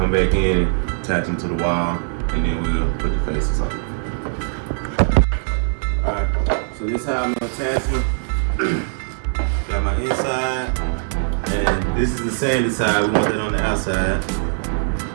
back in and attach them to the wall, and then we'll put the faces on. Alright, so this is how I'm gonna attach them. Got my inside, and this is the sanded side. We want that on the outside.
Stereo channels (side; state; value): left; silent; digital silence